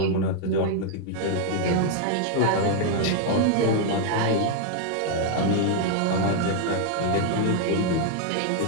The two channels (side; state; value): both; different; correlation 0.00